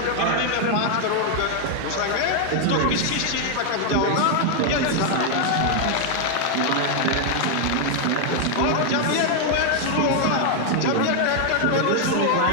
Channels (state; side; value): different; both; correlation 0.00